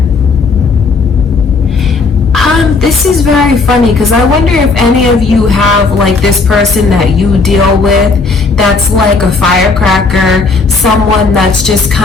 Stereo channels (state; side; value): quieter; right; 4.1 dB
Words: This is very funny because I wonder if any of you have like this person that you deal with that's like a firecracker, someone that's just